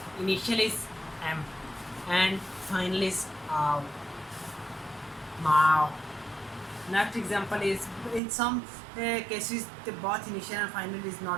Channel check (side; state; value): left; drops out; at 8.2 s